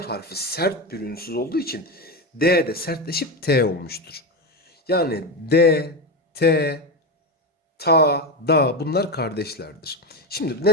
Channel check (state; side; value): normal; both; correlation 0.15